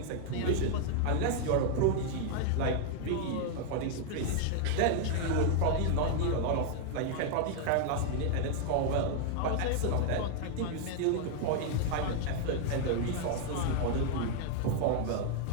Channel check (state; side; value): different; both; correlation 0.00